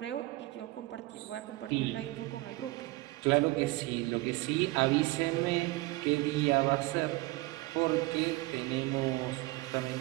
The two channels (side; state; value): left; quieter; 20.7 dB